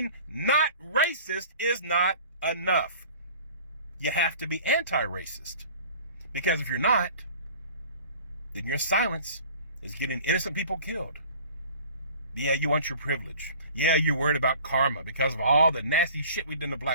not racist is not enough. You have to be anti-racist. Because if you're not, then your silence is getting innocent people killed. Yeah, you want your privilege. Yeah, you're worried about karma because of all the nasty shit we've done to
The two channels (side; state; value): both; inverted; correlation -0.46